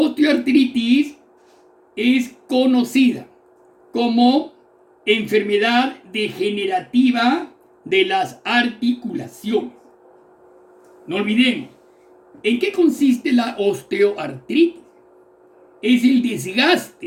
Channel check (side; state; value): both; identical; correlation 1.00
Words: es conocida como enfermedad degenerativa de las articulaciones. No olvidemos, ¿En qué consiste la osteoartritis? Es el